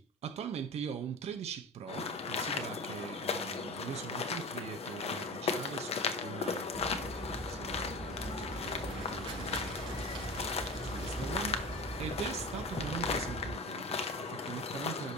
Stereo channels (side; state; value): both; normal; correlation 0.32